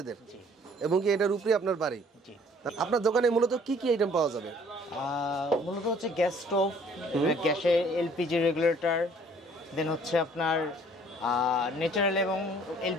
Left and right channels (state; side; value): normal; both; correlation 0.57